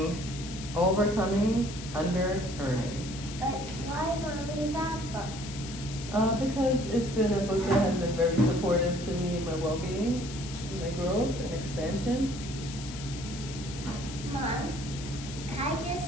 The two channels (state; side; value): noise; left; hiss, 12 dB below the sound